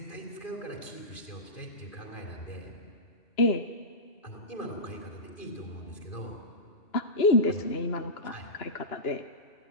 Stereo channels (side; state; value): right; late; 2.9 ms